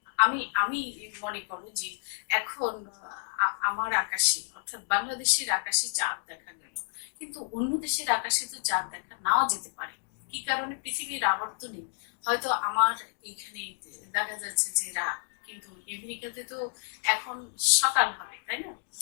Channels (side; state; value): right; silent; digital silence